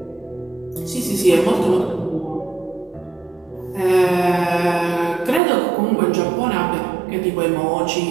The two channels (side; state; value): left; drops out; at 5.4 s